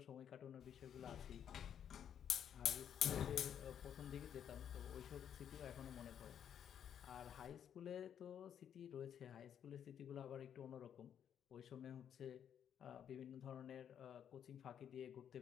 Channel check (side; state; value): right; quieter; 9.0 dB